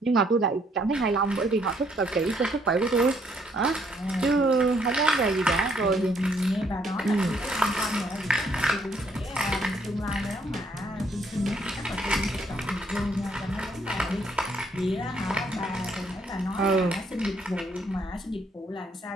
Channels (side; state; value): both; normal; correlation 0.68